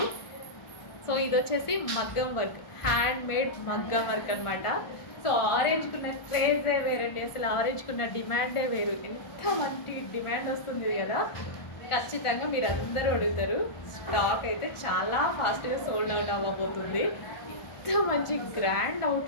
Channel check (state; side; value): late; right; 1.4 ms